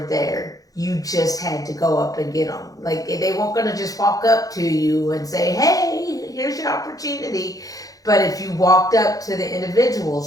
You just had to go up and get them. Like, they weren't going to just walk up to you and say, "Hey, here's your opportunity." But if you walked up to the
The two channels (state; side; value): late; right; 0.17 ms